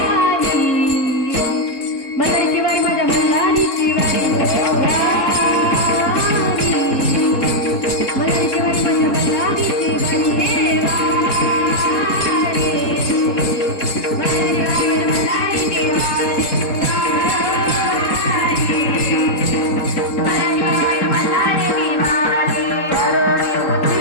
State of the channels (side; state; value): right; late; 3.7 ms